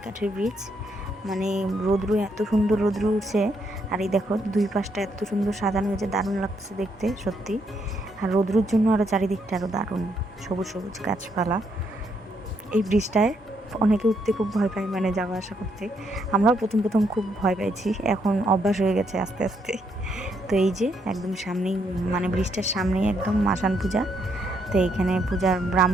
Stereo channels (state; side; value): normal; both; correlation 0.75